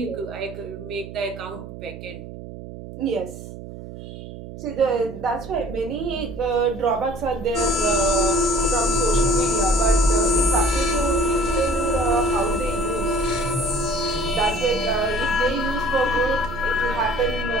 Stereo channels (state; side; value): noise; right; hum, 12 dB below the sound